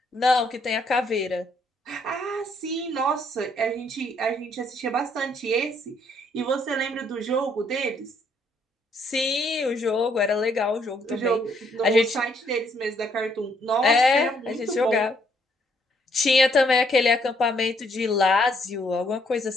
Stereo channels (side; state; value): both; normal; correlation 0.69